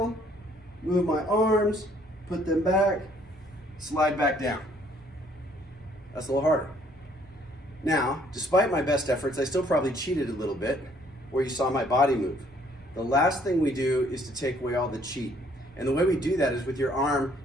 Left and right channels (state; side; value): normal; both; correlation 0.63